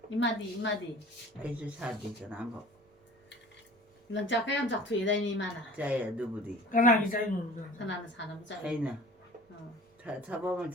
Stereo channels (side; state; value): both; normal; correlation 0.44